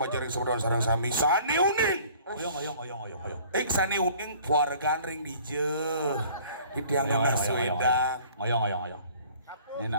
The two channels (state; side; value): inverted; both; correlation -0.52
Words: sebelum sarang sami sane uning. Oyong. Sane uning keluargaan ring dije. Di tiang nasi wedang. Oyong. Ini